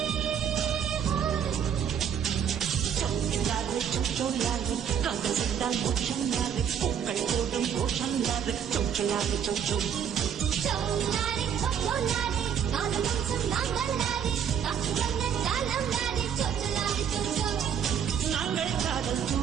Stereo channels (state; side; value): quieter; left; 8.1 dB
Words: காதல் சென்றால் மோட்சம் யாரு, பூக்கள் போடும் கோஷம் யாரு, சொச்சலாறு சொச்சோ. நாங்கள் காதல்